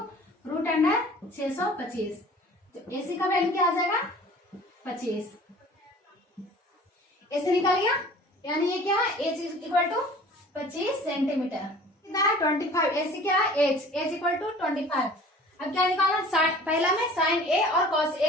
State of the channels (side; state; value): both; normal; correlation 0.46